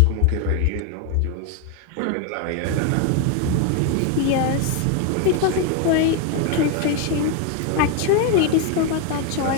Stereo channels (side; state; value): both; different; correlation 0.01